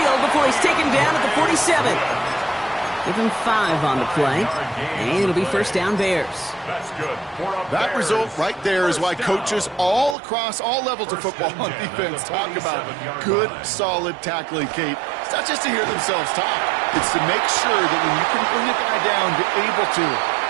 before he's taken down at the 47. Give him 5 on the play, and it'll be first down Bears. That's good. That result right there is why coaches all across all levels of football on defense talk about good, solid tackling, Kate. It's not just to hear themselves talk. It's to make sure that when you can bring a guy down, you're able to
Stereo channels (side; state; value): left; drops out; at 10.2 s